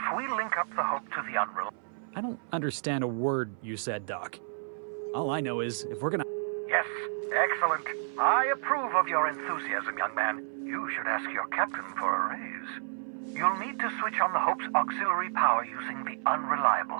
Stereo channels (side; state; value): left; silent; 57 dB below the other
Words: we link up the Hope to the Unreal... I don't understand a word you said, Doc. All I know is, if we're gonna... Yes, excellent. I approve of your enthusiasm, young man. You should ask your captain for a raise. You'll need to switch on the Hope's auxiliary power using the